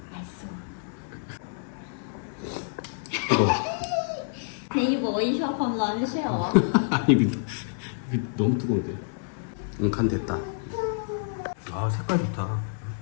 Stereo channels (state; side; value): silent; right; 59 dB below the other